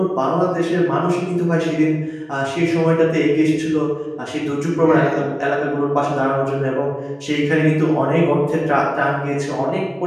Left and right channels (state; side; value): identical; both; correlation 1.00